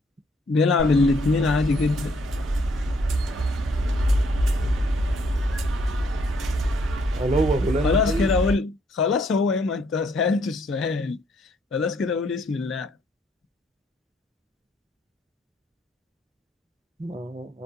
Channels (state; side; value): normal; both; correlation 0.69